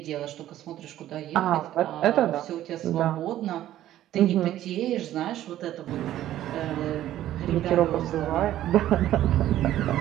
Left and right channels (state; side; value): quieter; left; 13.1 dB